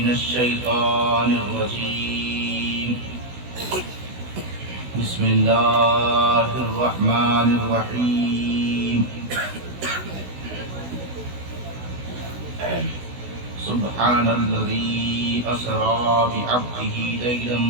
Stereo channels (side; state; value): left; late; 16 ms